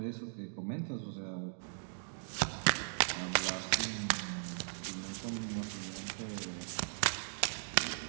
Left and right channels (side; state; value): left; silent; digital silence